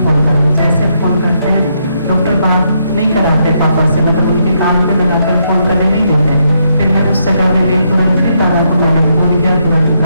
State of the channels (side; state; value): both; inverted; correlation -0.77